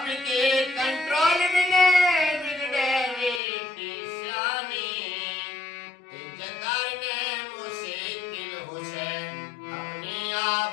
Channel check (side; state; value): right; drops out; at 3.4 s